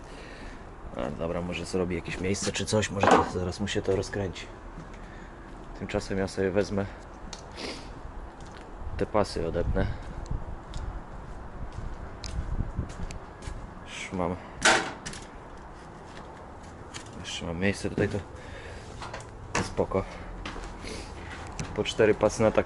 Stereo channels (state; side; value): identical; both; correlation 1.00